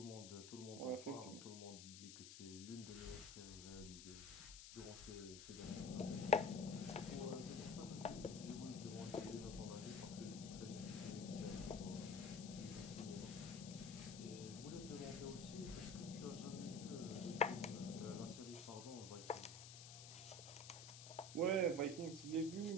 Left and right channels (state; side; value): noise; left; hiss, 11 dB below the sound